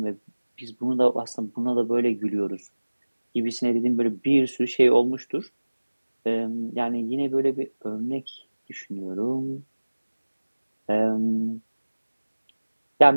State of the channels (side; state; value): both; inverted; correlation -1.00